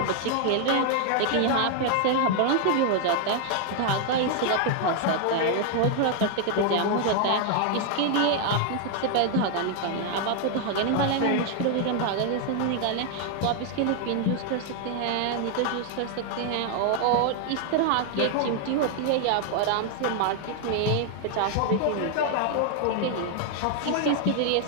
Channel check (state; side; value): different; both; correlation 0.00